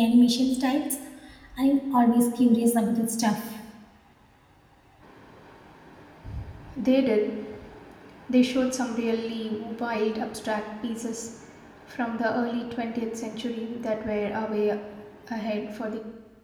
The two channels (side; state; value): both; identical; correlation 1.00